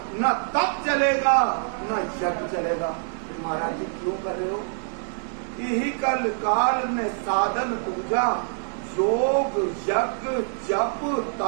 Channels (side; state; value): left; silent; digital silence